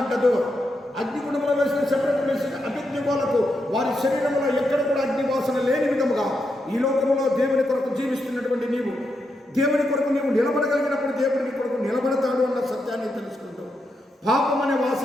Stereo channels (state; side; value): normal; both; correlation 0.84